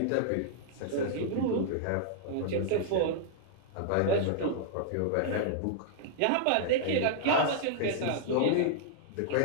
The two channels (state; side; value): different; both; correlation -0.01